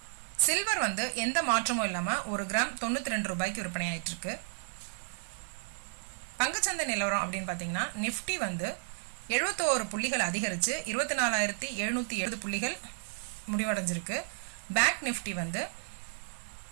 சில்வர் எந்த மாற்றமும் இல்லாமல் ஒரு கிராம் 92 ரூபாய்க்கு விற்பனை ஆயிட்டு இருக்கு. பங்குச்சந்தை நிலவரம் அப்படின்னு பார்த்தீங்கன்னா, நிஃப்டி 71 புள்ளிகள் அதிகரித்து 24,770 புள்ளிகள் முடிவடைஞ்சிருக்கு. பேங்க் நிஃப்டி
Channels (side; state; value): left; silent; 56 dB below the other